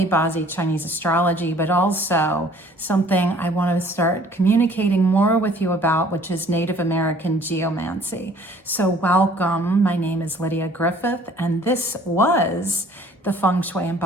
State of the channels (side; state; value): both; normal; correlation 0.55